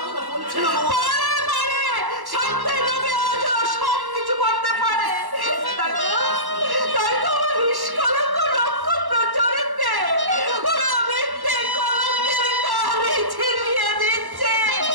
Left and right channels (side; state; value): left; late; 1.1 ms